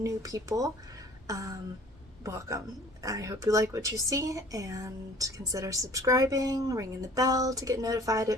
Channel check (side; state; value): both; normal; correlation 0.50